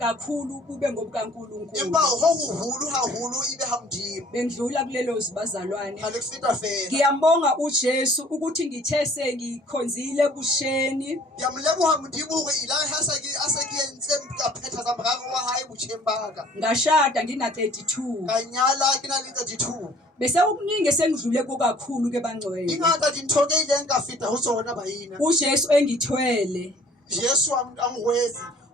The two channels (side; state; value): both; normal; correlation 0.54